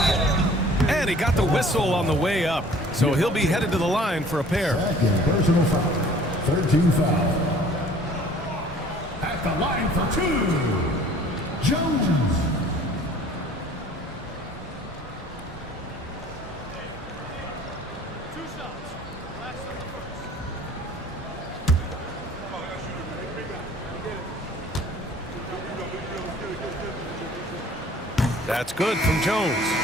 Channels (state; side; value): normal; both; correlation 0.52